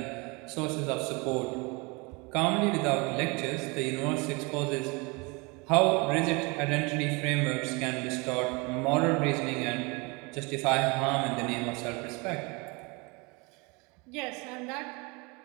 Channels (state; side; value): quieter; left; 28.2 dB